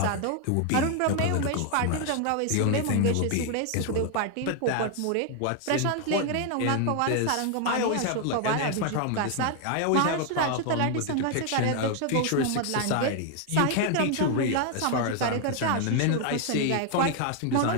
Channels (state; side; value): different; both; correlation 0.00